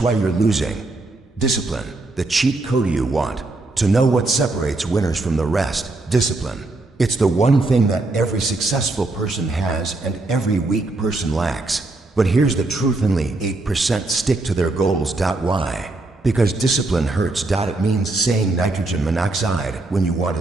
why you're losing. Discipline, the cheat code you want to know what separates winners from the rest. Discipline. It's the one thing that every successful person has and every weak person lacks. But here's the truth: only 8% stick to their goals. Why? Because discipline hurts. It means saying nitrogen monoxide when you want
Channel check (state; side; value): quieter; left; 3.1 dB